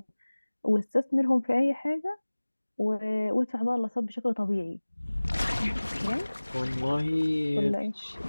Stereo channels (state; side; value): inverted; both; correlation -1.00